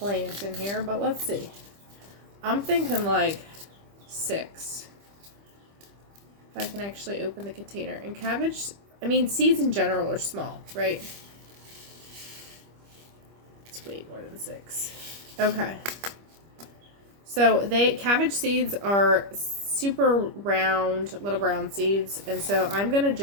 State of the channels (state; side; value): late; left; 25 ms